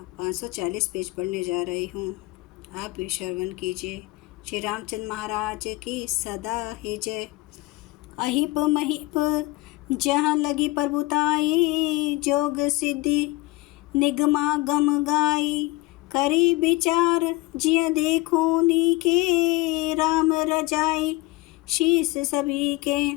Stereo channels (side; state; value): right; quieter; 21.0 dB